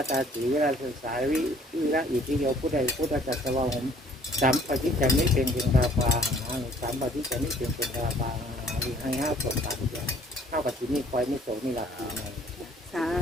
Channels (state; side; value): normal; both; correlation 0.57